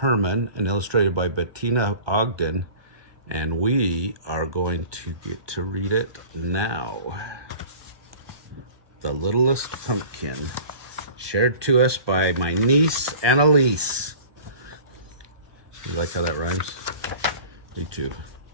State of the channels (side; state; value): left; late; 1.2 ms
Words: and illustrated by Betina Ogden. And we are going to get to read it now. The Littlest Pumpkin, shared to us by my niece, Annalise. You like how that rhymes? Me too.